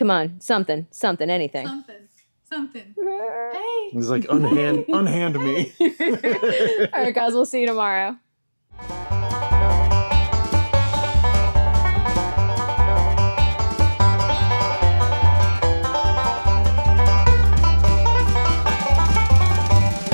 on, something, anything. Something. Hey. He's like, unhand me. All right, guys, we'll see you tomorrow.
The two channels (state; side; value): inverted; both; correlation -1.00